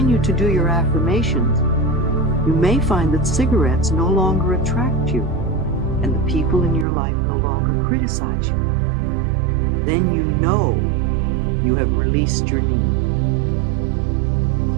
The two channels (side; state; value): left; drops out; at 6.9 s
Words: to do your affirmations, you may find that cigarettes no longer attract you, and the people in your life no longer criticize you. Then you know you have released your need.